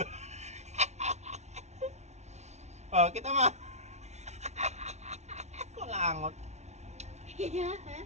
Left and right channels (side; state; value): left; late; 0.32 ms